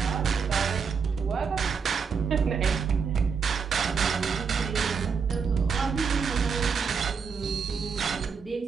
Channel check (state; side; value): quieter; left; 5.9 dB